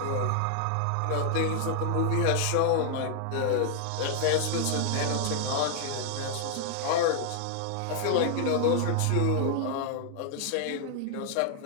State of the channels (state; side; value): different; both; correlation 0.00